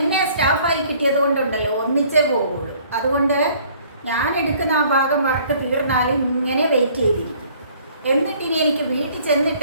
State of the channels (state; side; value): inverted; both; correlation -0.57